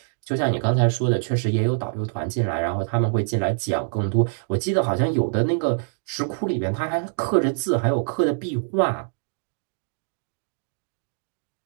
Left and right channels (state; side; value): silent; left; 62 dB below the other